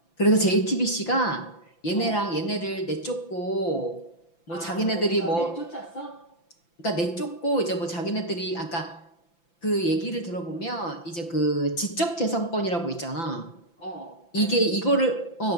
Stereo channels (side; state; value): right; late; 5.9 ms